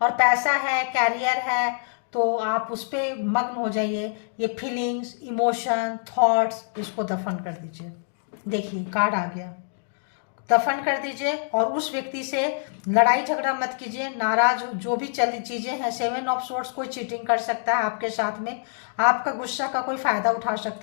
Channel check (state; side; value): silent; right; digital silence